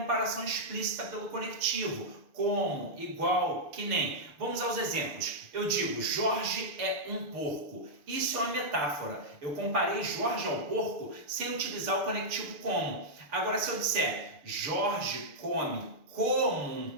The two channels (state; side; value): late; left; 6.8 ms